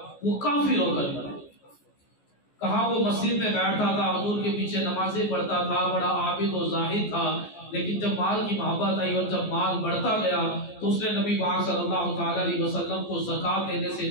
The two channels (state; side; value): late; right; 14 ms